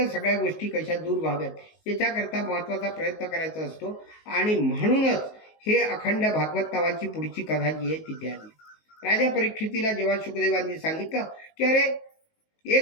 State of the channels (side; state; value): right; late; 19 ms